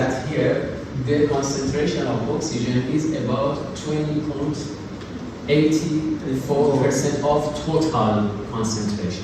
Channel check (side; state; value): both; identical; correlation 1.00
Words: here the concentration of oxygen is about 20.84% of total